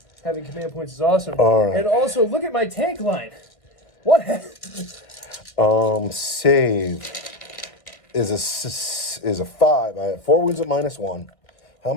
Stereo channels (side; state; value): right; late; 1.6 ms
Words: Having command points is awesome. All right. And also, look at my tank line. What? Save is a 5. I have 4 wounds at -1. How